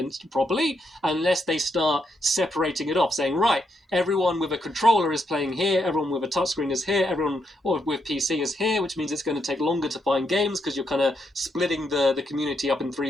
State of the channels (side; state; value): both; normal; correlation 0.79